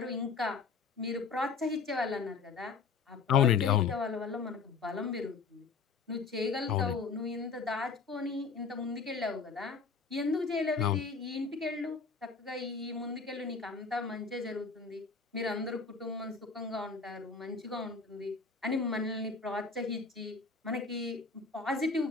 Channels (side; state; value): right; quieter; 5.0 dB